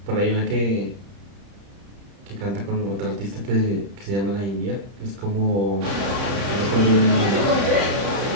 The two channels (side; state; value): left; late; 30 ms